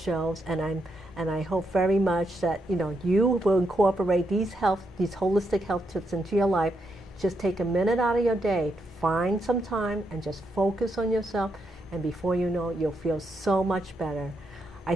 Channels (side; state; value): both; normal; correlation 0.81